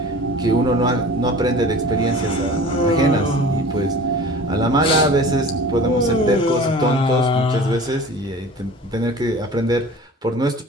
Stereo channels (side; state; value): both; normal; correlation 0.41